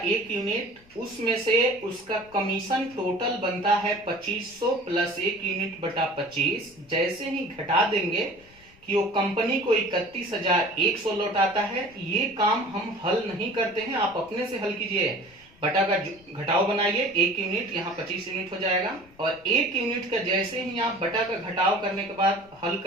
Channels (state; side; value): noise; left; rumble, 27 dB below the sound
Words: 1 यूनिट, उसमें से उसका कमीशन टोटल बनता है 2500 प्लस 1 यूनिट बटा 25। जैसे ही घटा देंगे कि वो कंपनी को 31,100 लौटाता है, ये काम हम हल नहीं करते हैं, आप अपने से हल कीजिए। बटा का घटाव बनाइए, 1 यूनिट यहाँ 25 यूनिट हो जाएगा और 1 यूनिट का जैसे ही आप बटा का घटाव करने के बाद हल